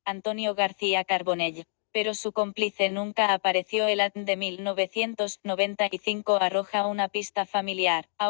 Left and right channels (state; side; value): silent; right; digital silence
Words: Antonio García Carbonell, pero su cómplice nunca apareció. El ADN de 1995 arroja una pista familiar.